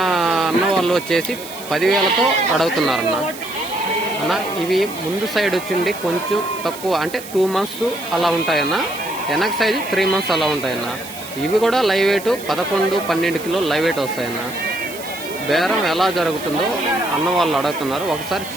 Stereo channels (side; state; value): right; noise; hiss, 14 dB below the sound